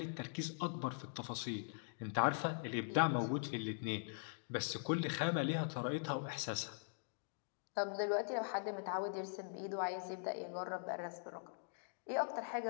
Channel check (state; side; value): silent; right; digital silence